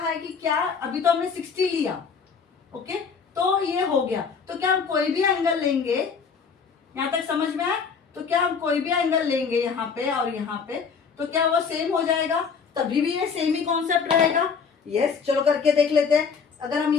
है कि क्या अभी तो हमने 60 लिया, ओके, तो ये हो गया, तो क्या हम कोई भी एंगल लेंगे? यहां तक समझ में आया? तो क्या हम कोई भी एंगल लेंगे यहाँ पे और यहाँ पे, तो क्या वो सेम हो जाएगा? तभी भी ये सेम ही कॉन्सेप्ट रहेगा, यस। चलो करके देख लेते हैं। अगर हम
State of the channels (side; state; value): right; quieter; 5.9 dB